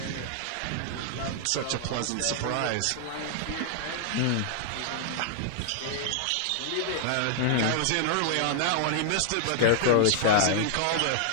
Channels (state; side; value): different; both; correlation -0.01